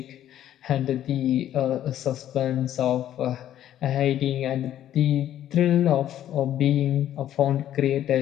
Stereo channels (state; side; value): quieter; right; 11.7 dB